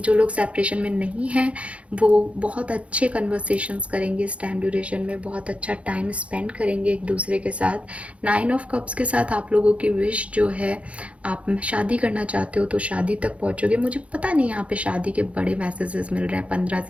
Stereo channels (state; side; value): late; left; 0.063 ms